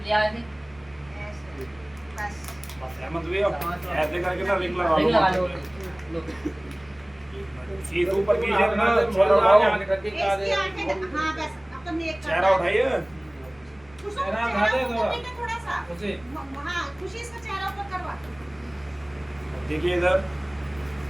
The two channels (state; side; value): noise; right; rumble, 27 dB below the sound